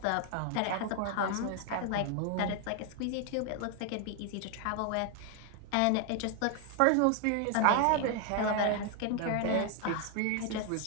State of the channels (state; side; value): different; both; correlation 0.00